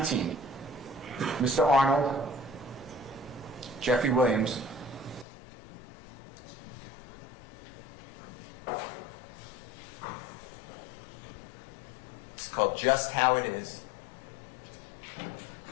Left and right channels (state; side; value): drops out; right; at 5.2 s